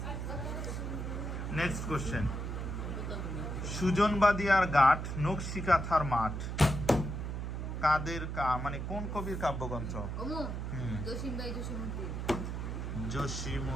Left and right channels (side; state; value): right; noise; hum, 4 dB below the sound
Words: Next question. সুজনবাদিয়ার ঘাট নকশিকাথার মাঠ কাদের মানে কোন কবির কাব্যগ্রন্থ?